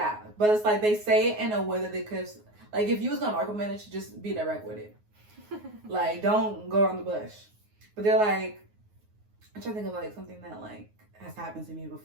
but it's like they say it in a way that they could, like, if you was gonna micromanage, just be direct with it. Like, don't go around the bush. But they're like, I'm trying to think of like something that like has happened to me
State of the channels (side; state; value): left; late; 9.5 ms